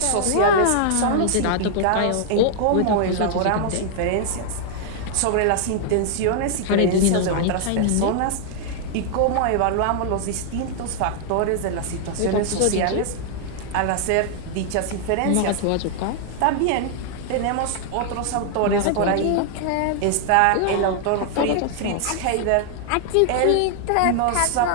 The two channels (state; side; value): different; both; correlation 0.00